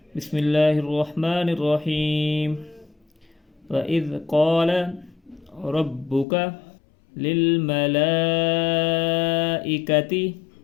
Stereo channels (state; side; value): drops out; right; at 6.2 s